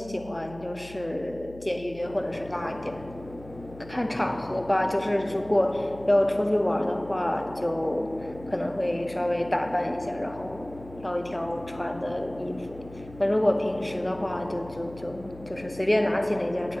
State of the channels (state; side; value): noise; left; hum, 18 dB below the sound